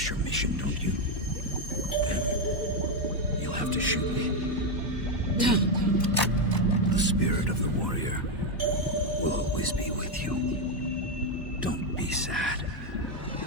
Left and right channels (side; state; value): both; normal; correlation 0.05